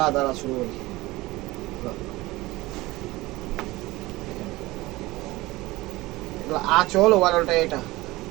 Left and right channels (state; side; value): quieter; left; 19.8 dB